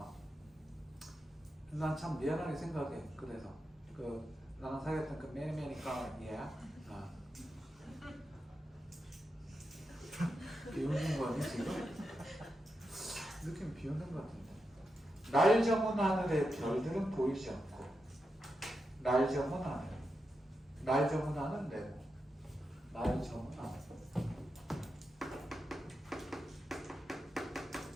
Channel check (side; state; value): both; normal; correlation 0.87